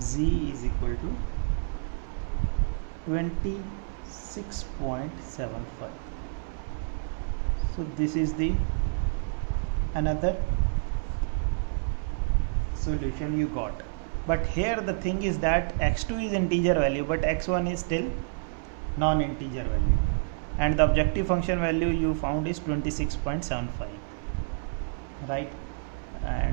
is equal to 26.75. so this is the another solution you got. But here the thing is that x2 is integer value but x1 is still non-integer value, and the objective function value you found is 26.75, right,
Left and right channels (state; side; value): silent; left; 59 dB below the other